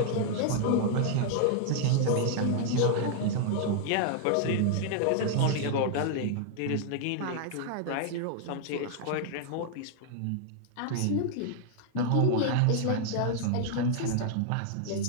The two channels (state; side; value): different; both; correlation 0.00